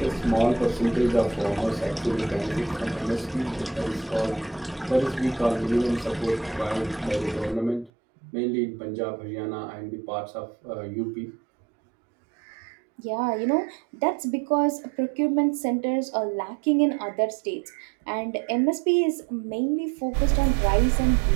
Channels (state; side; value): drops out; left; at 7.9 s